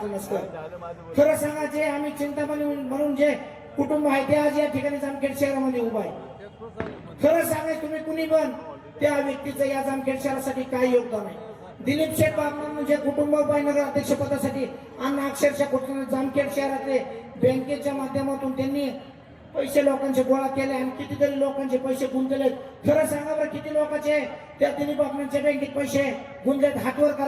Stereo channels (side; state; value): both; identical; correlation 1.00